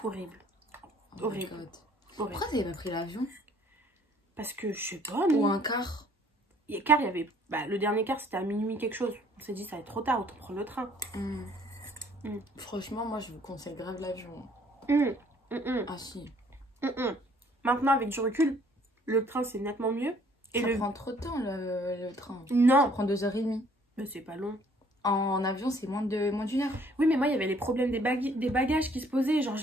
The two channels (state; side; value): normal; both; correlation 0.60